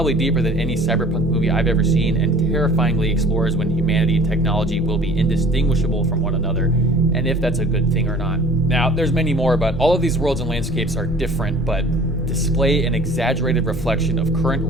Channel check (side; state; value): both; normal; correlation 0.48